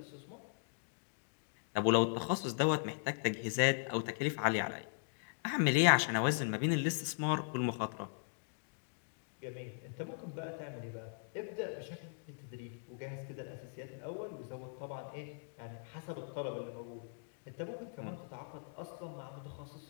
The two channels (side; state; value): right; silent; digital silence